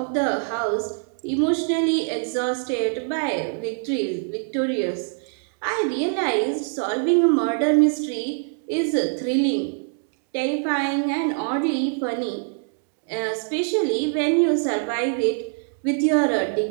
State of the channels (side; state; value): left; silent; 60 dB below the other